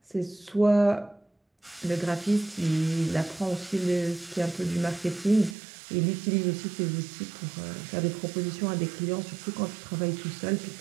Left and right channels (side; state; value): left; drops out; at 5.6 s